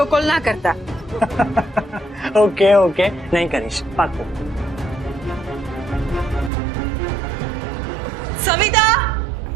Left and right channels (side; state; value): left; drops out; at 6.5 s